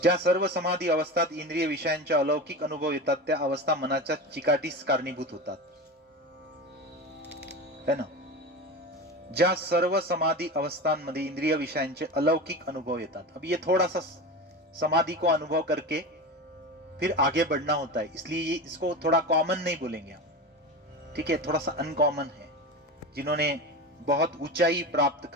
ज्या सर्व समाधी अवस्थात इंद्रिय विषयांचे अलौकिक अनुभव येतात त्या अवस्था मनाच्या चिकाटीस कारणीभूत होतात, है ना। ज्या सर्व समाधि अवस्थांमध्ये इंद्रिय विषयांचे अलौकिक अनुभव येतात, अब ये थोड़ा सा समाधि को अनुभव करके फिर आगे बढ़ना होता है, इसलिए ये इसको थोड़ा कॉमन नहीं बोलेंगे हम, ठीक है, थोड़ा सा अनकॉमन है। जिन्होंने बहुत ऊंचाई प्राप्त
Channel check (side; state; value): both; normal; correlation 0.26